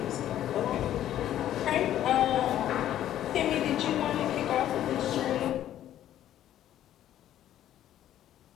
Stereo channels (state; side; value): quieter; right; 11.9 dB